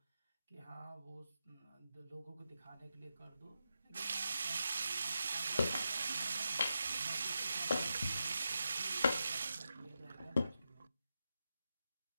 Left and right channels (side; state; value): both; inverted; correlation -0.88